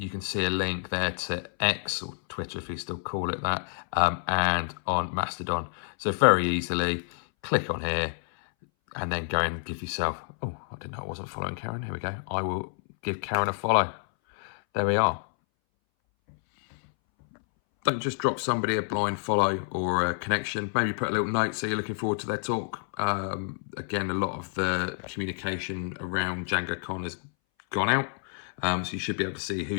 can see a link there to X, or Twitter if you still call it that, and on Mastodon. So very easily click on here and then go and give yourself, oh, I didn't know I wasn't following Karen. Here we go. I will give Karen a follow. There we are. Don't just drop somebody a blind follow or a connection. Maybe put a little note so you're looking forward to their talk. Again, a lot of the communication around DjangoCon has gone out. So you should be able to see who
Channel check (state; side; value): silent; right; 59 dB below the other